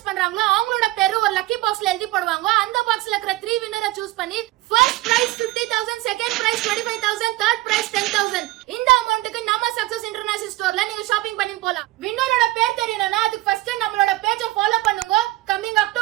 பண்றாங்களோ அவங்களோட பேரு ஒரு லக்கி பாக்ஸ்ல எழுதி போடுவாங்க. அந்த பாக்ஸ்ல இருக்கிற 3 வின்னரை சூஸ் பண்ணி first prize 50,000, second prize 25,000, third prize 10,000. இந்த அமௌண்ட்க்கு நம்ம சக்சஸ் இன்டர்நேஷனல் ஸ்டோர்ல நீங்க ஷாப்பிங் பண்ணி போலாம். வின்னரோட பேர் தெரியணும்னா அதுக்கு ஃபர்ஸ்ட் நம்மளோட பேஜை ஃபாலோ பண்ணுங்க. கமிங்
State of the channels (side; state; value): left; quieter; 18.3 dB